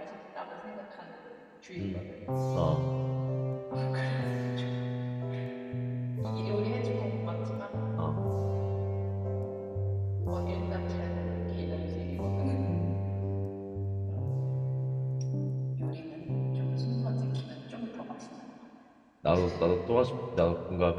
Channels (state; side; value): identical; both; correlation 1.00